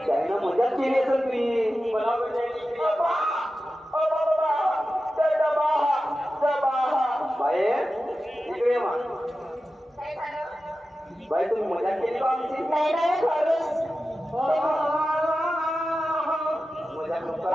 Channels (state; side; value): normal; both; correlation 0.93